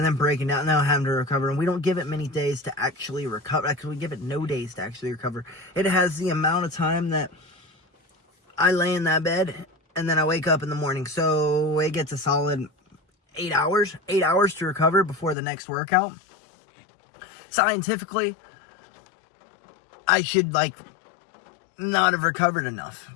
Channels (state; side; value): drops out; right; at 15.4 s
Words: then breaking down and then having to recover. And we don't give it many days to actually recover. Actually, we give it no days to actually recover. It has the amount of time that I lay in that bed and then I wake up in the morning. So it gets a solid 8 hours to recover before the next workout. Scientifically, I should not have recovered enough,